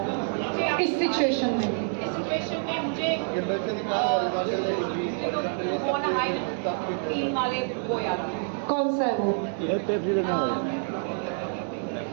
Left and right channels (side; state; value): left; silent; 60 dB below the other